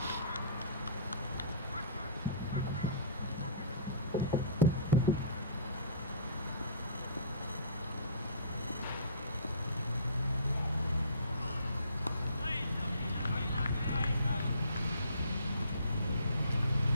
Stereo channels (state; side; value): inverted; both; correlation -0.46